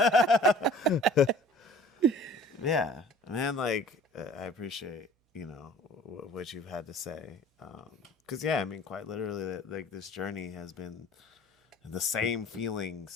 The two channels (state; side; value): normal; both; correlation 0.49